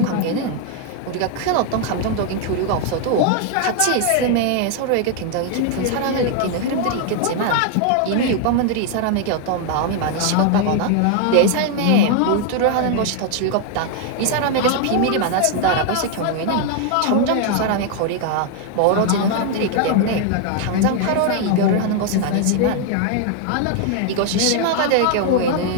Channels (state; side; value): different; both; correlation 0.00